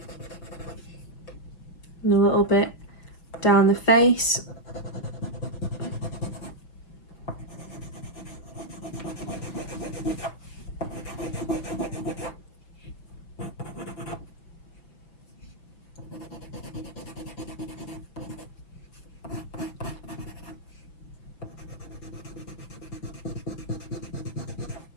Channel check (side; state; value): right; late; 5.9 ms